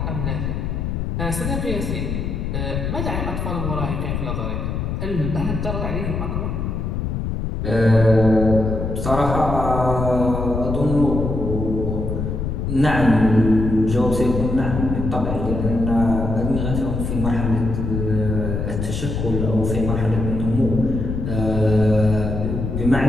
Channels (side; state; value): left; noise; rumble, 2 dB below the sound